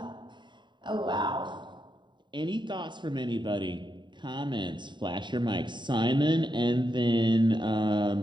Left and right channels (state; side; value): late; left; 0.22 ms